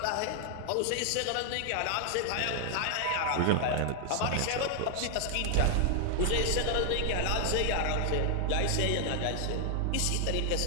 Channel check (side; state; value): both; different; correlation 0.00